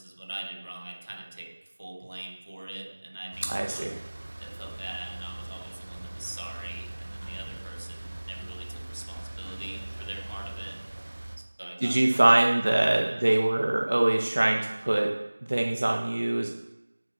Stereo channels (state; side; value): inverted; both; correlation -1.00